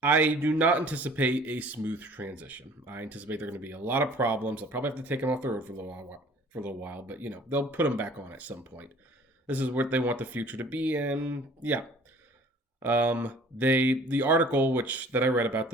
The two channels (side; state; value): both; normal; correlation 0.51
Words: do not anticipate a smooth transition. I anticipate there are going to be a lot of problems. I'll probably have to take them off the road for a little while, but they'll put them back on at some point. This is what they want the future to be, and yeah, the article which that I read about